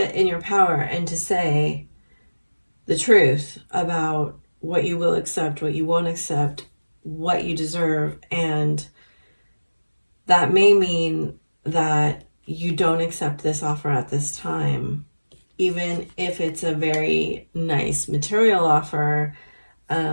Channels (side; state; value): both; inverted; correlation -1.00